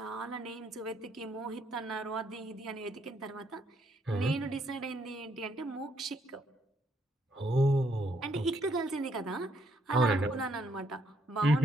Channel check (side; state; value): both; normal; correlation 0.72